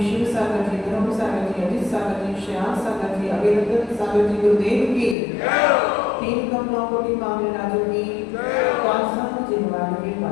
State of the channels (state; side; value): drops out; right; at 5.2 s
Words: शिव सागर जी, धर्म सागर जी, अजित सागर जी, श्याम सागर जी, अभिरतन सागर जी गुरुदेव की, 3 कमलों कोटि मामले राजों की, जिनवान की